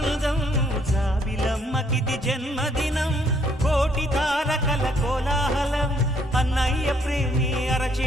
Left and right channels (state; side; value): normal; both; correlation 0.68